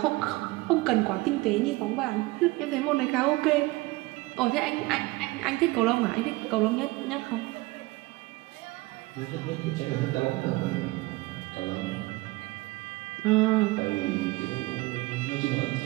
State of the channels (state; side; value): quieter; left; 21.5 dB